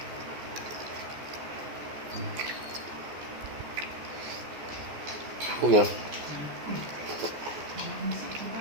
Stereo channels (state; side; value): late; left; 14 ms